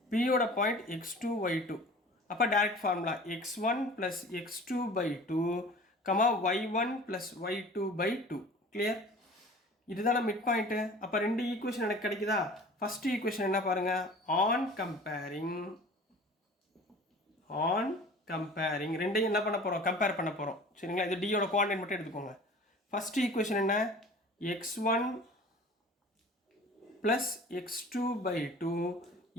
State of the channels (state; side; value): normal; both; correlation 0.44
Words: B உட பாயிண்ட் x2 y2. அப்போ direct formula x1 plus x2 by 2, y1 plus y2 by 2. Clear? இதுதான mid point. அப்போ ரெண்டு equation எனக்கு கிடைக்குதா? First equation என்ன பாருங்க? ஆன் கம்பேரிங் ரெண்டையும் என்ன பண்ண போகிறோம்? கம்பேர் பண்ண போகிறோம். சரிங்களா? இது டியோட கோஆர்டினேட் மட்டும் எடுத்துக்கோங்க. ஃபர்ஸ்ட் ஈக்குவேஷன் என்ன? x1 plus x2 by 2